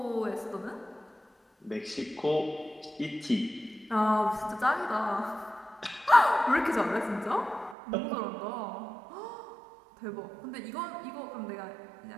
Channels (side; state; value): left; drops out; at 7.8 s